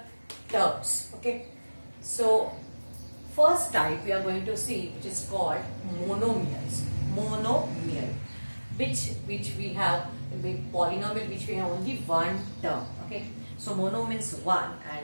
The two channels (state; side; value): inverted; both; correlation -1.00